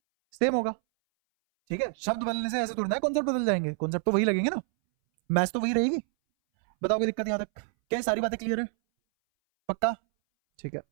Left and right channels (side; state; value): left; silent; 60 dB below the other